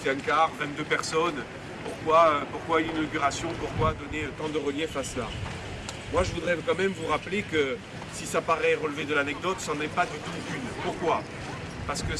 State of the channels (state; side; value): identical; both; correlation 1.00